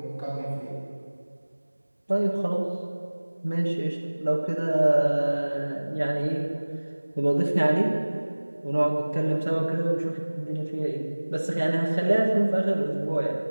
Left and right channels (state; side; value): inverted; both; correlation -1.00